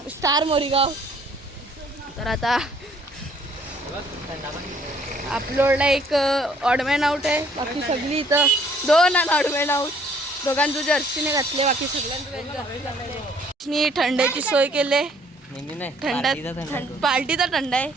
स्टार मोरीगाव. तर आता अपलोडला एक ऑडमॅन आउट आहे, बाकी सगळी इथं 2 ऑडमॅन आउट. दोघांचं जर्सीने घातले, बाकी सगळ्यांनी थंड्याची सोय केली. पार्टीचा थंडा आहे.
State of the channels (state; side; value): normal; both; correlation 0.61